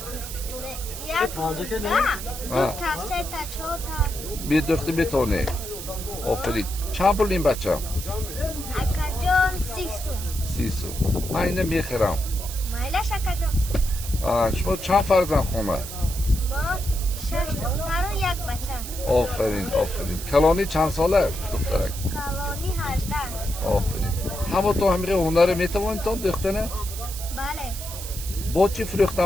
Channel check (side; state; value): right; noise; hiss, 10 dB below the sound